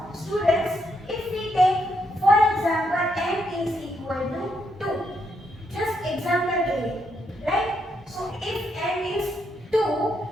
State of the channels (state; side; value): normal; both; correlation 0.78